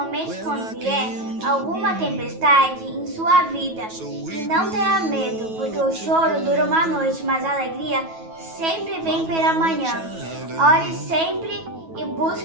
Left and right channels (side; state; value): left; late; 9.2 ms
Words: quando vier alguma tempestade em sua vida e não tenha medo, porque o choro dura uma noite, mas a alegria sempre vem pela manhã. Ore sempre e